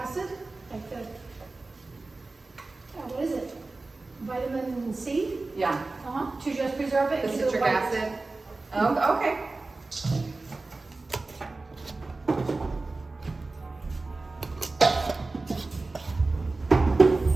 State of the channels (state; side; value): quieter; left; 3.4 dB